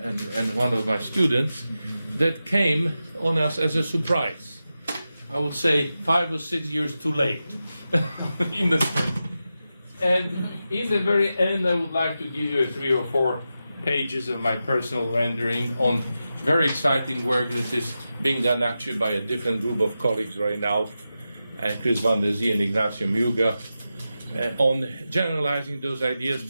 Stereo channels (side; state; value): both; inverted; correlation -0.91